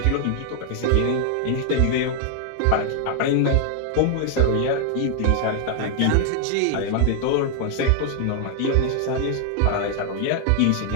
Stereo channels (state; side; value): different; both; correlation 0.00